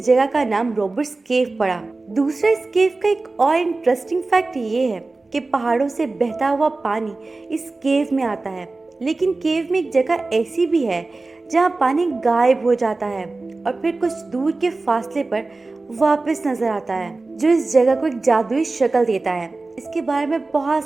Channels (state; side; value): quieter; left; 3.4 dB